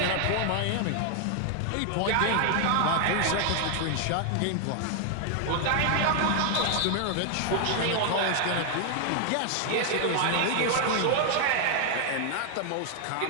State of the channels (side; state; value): both; different; correlation 0.00